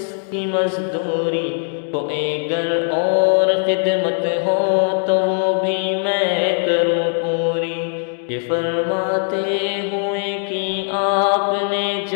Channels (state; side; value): silent; right; 62 dB below the other